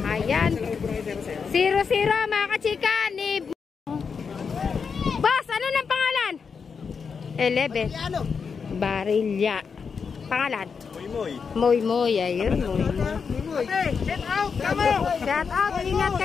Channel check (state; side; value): quieter; right; 5.8 dB